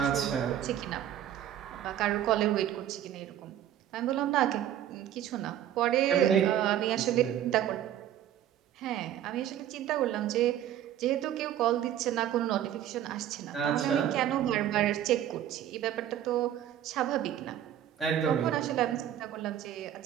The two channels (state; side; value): quieter; left; 11.2 dB